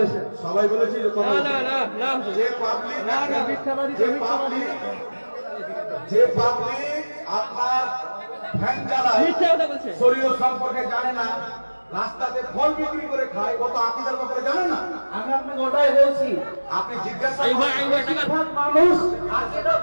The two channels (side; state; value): both; inverted; correlation -1.00